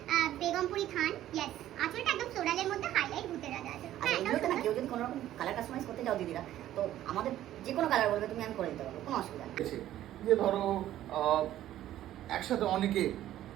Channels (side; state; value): left; quieter; 13.0 dB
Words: Begampuri থান। ইয়েস, আঁচলটা একদম ফ্লোরালের মধ্যে হাইলাইট ভূতের রাজা আছে। হ্যাঁ, এটা না, কেউ যদি কোনো রকম কালার কাস্টমাইজ করতে যাও দিদিরা, তো আমাদের যে কোনো কালার বলবে তুমি, আমি করে দিতে পারবো, কোনো অসুবিধা নেই। যে ধরো একসাথে অনেকে